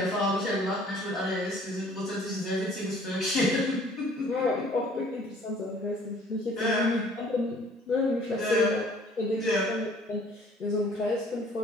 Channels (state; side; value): normal; both; correlation 0.55